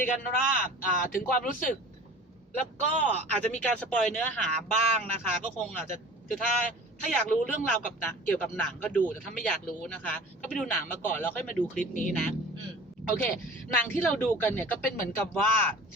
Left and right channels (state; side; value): normal; both; correlation 0.41